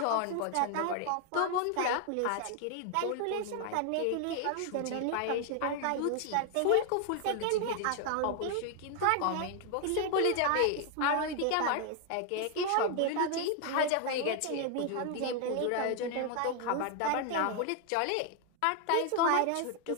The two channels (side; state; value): both; different; correlation 0.00